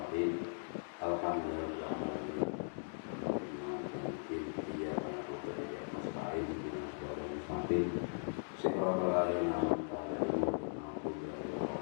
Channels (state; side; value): silent; right; digital silence